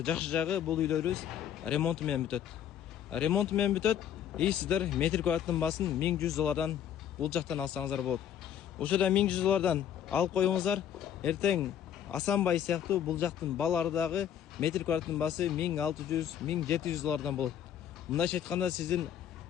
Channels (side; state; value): right; quieter; 9.8 dB